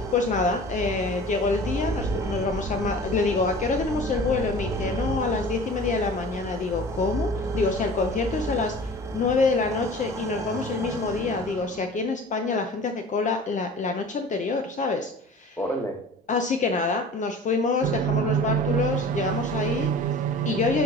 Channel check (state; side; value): normal; both; correlation 0.42